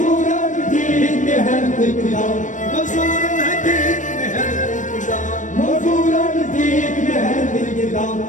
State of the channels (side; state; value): right; late; 0.37 ms